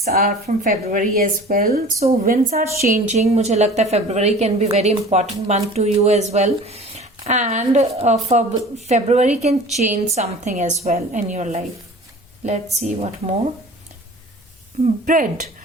are from February as well. So winds are changing. मुझे लगता है February can be very important month to you as well. And for February can change something as well in your life. Let's see what more. Bread.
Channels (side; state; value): both; normal; correlation 0.43